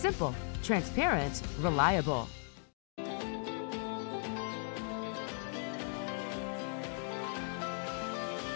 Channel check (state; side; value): silent; right; 53 dB below the other